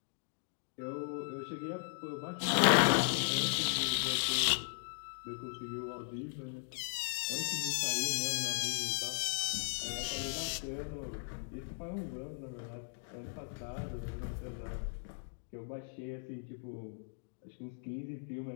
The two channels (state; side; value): silent; right; digital silence